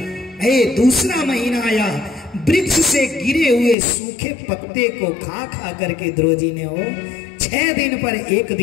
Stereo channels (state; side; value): drops out; right; at 3.8 s